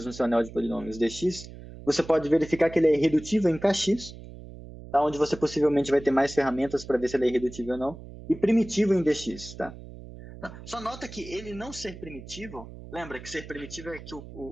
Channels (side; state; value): right; noise; hum, 15 dB below the sound